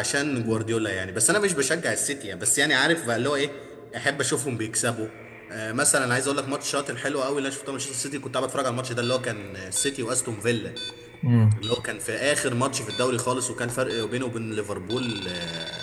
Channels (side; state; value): both; identical; correlation 1.00